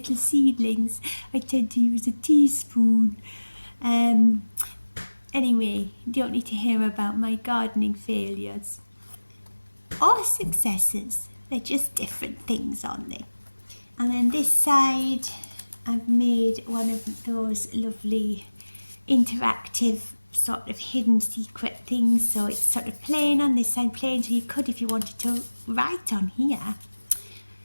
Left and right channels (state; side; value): inverted; both; correlation -1.00